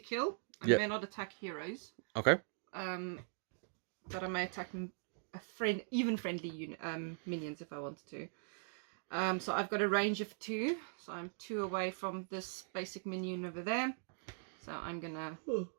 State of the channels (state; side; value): silent; left; digital silence